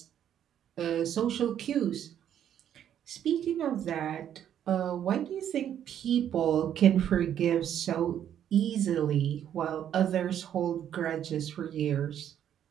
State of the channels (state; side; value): quieter; left; 10.0 dB